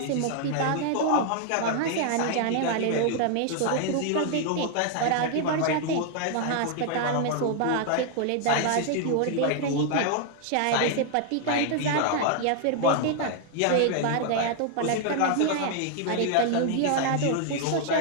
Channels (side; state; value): both; different; correlation 0.00